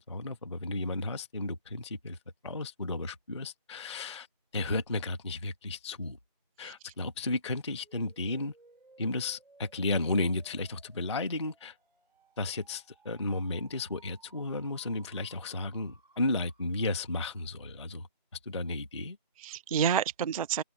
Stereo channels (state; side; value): inverted; both; correlation -0.53